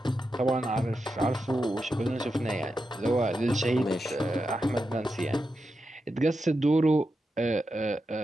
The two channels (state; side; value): normal; both; correlation 0.88